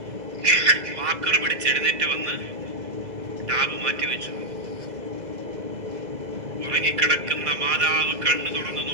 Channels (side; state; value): left; late; 2.0 ms